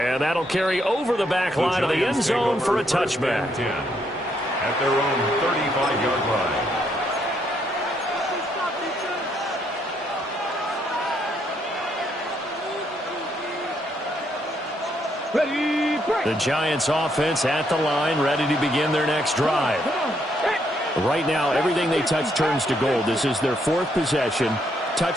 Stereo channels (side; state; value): both; normal; correlation 0.74